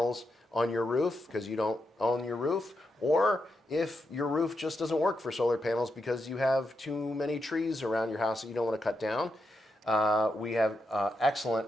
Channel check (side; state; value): both; normal; correlation 0.84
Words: on your roof because you don't own your roof, or if your roof just doesn't work for solar panels because you have too many trees around your house that you don't want to cut down, we have excellent